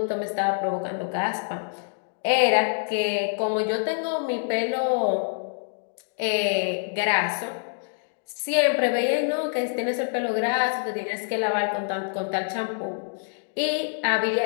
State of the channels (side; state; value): right; silent; digital silence